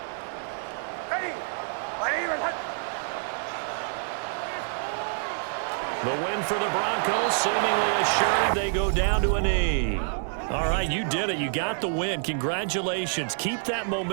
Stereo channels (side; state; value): left; silent; digital silence